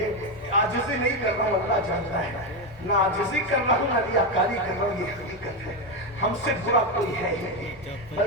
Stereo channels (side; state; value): both; normal; correlation 0.10